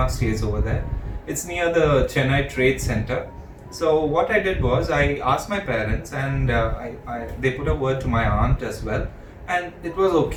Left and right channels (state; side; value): identical; both; correlation 1.00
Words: stays over there. It's near the Chennai Trade Center. So what I did was I asked my parents, and they put a word to my aunt as well, and it was